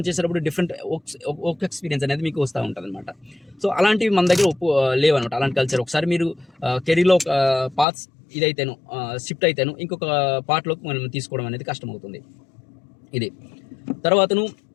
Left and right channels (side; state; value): right; drops out; at 7.9 s